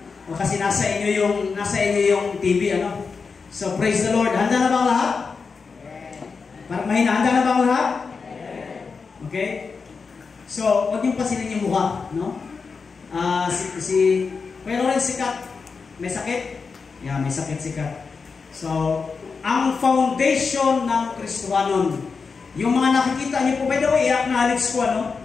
O kasi nasa inyo yung TV, ano? So, praise the Lord. Handa na ba ang lahat? Parang mahina. Handa na ba ang lahat? Okay? So, huwag niyong pasinin yung mukha, no? Pero rin sikat. May sakit? Yeah, may sakit sikat. So, ang foundation ng Kristohanon. Yung mga nakikita niyo po, by the way, acknowledge ko, ano?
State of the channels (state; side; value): quieter; right; 5.0 dB